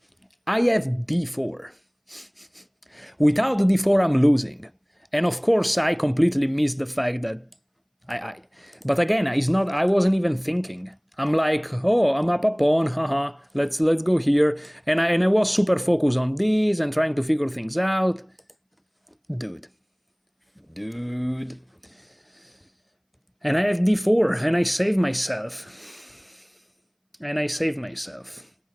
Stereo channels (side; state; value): both; identical; correlation 1.00